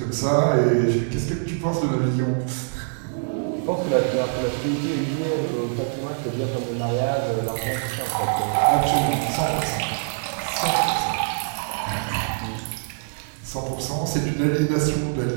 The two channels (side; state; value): left; silent; digital silence